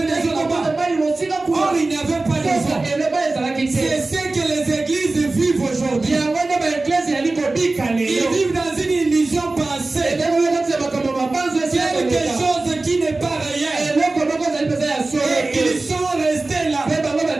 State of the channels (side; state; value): left; quieter; 3.2 dB